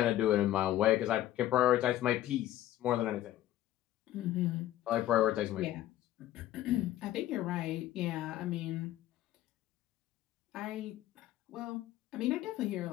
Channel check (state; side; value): quieter; right; 13.6 dB